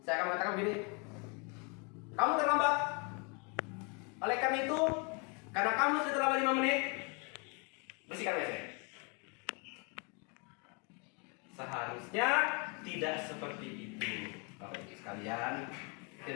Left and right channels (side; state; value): right; quieter; 33.5 dB